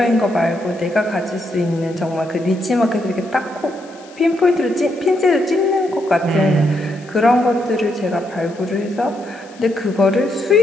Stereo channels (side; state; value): left; noise; hiss, 25 dB below the sound